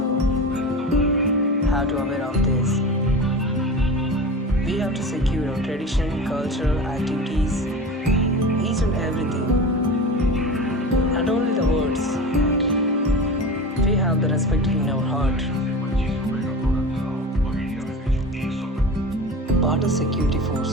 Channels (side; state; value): both; normal; correlation 0.31